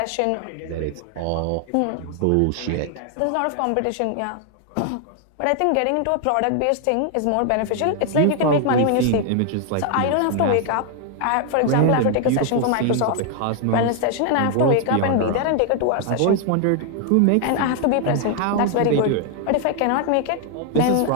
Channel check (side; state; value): both; different; correlation 0.00